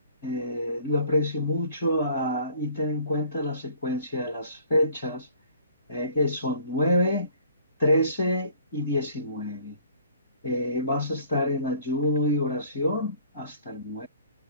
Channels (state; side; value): inverted; both; correlation -0.53